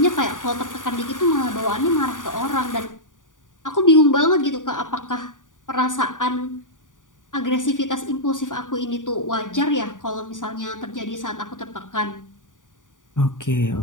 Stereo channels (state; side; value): late; right; 0.88 ms